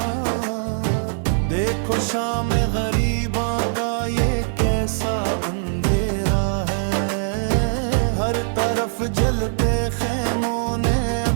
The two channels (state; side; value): silent; left; digital silence